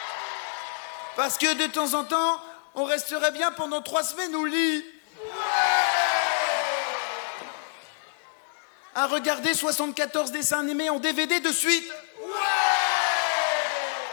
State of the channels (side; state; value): right; silent; 60 dB below the other